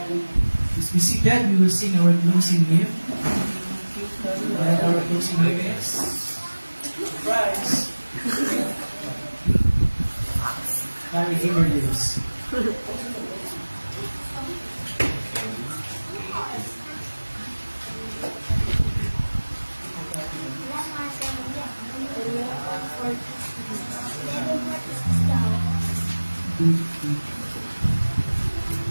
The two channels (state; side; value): inverted; both; correlation -1.00